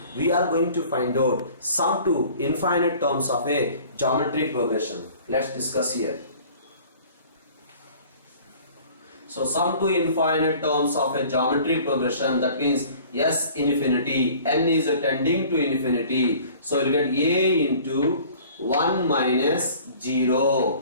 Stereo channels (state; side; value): inverted; both; correlation -0.49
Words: we are going to find out sum to infinite terms of a geometric progression. Let's discuss here. So sum to infinite terms of a geometric progression, that means S infinity, n is tending to infinity. So you will get a into 1 minus